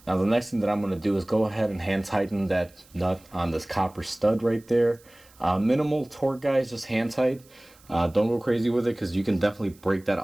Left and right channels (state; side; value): noise; right; hiss, 28 dB below the sound